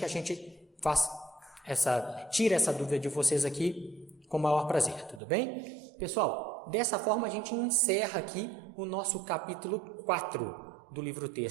a gente tira essa dúvida de vocês aqui com o maior prazer, tudo bem? Pessoal, dessa forma a gente encerra aqui o nosso capítulo 4 do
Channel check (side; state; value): left; drops out; at 5.2 s